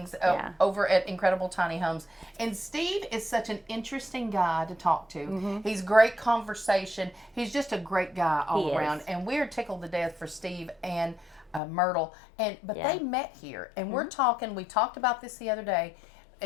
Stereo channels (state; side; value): drops out; right; at 11.6 s